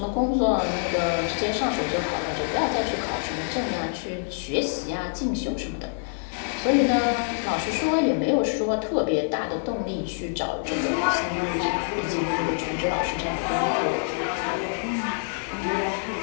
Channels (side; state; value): right; silent; digital silence